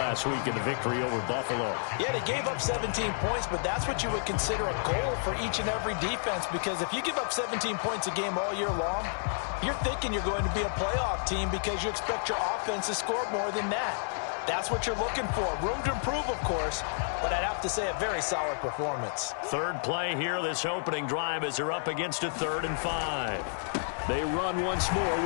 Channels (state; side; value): silent; right; digital silence